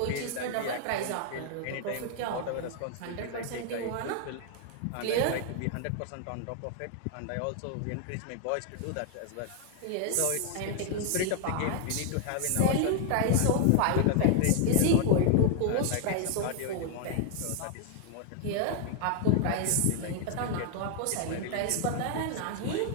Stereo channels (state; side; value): different; both; correlation 0.00